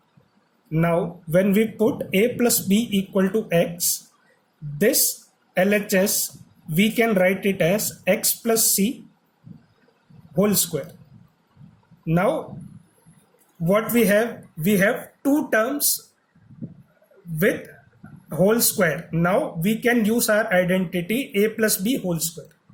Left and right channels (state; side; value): identical; both; correlation 1.00